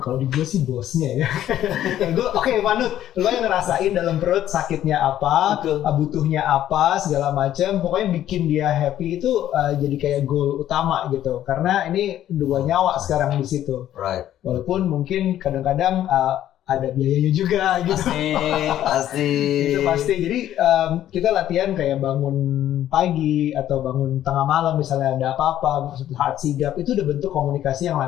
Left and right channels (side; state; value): right; quieter; 12.0 dB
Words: di gue sih bosnya ya. Gue oke, Manut, lo yang ngerasain dalam perut sakitnya apa, butuhnya apa, segala macam. Pokoknya bikin dia happy itu jadi kayak goal utama gitu. Karena ini 2 nyawa sekarang di situ. Right. Walaupun mungkin kadang-kadang ada biayanya juga gitu. Pasti. Itu pasti. Jadi kita latihan kayak bangun pagi atau bangun tengah malam misalnya ada apa-apa, saat sigap itu udah bentuk komunikasi yang